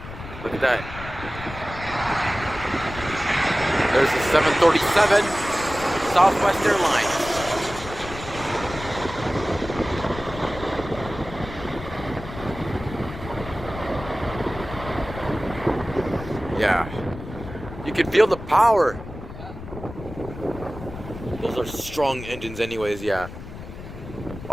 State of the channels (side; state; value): left; noise; rumble, 12 dB below the sound